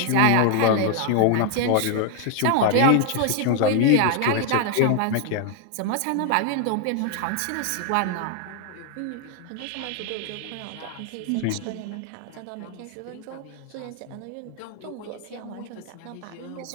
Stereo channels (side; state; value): both; different; correlation 0.00